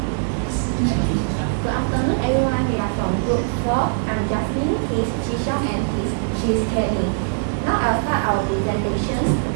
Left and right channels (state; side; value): silent; left; digital silence